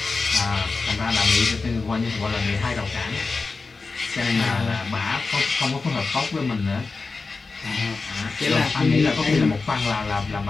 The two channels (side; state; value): right; quieter; 4.1 dB